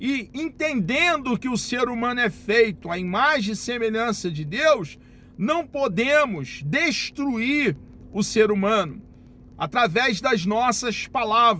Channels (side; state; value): both; identical; correlation 1.00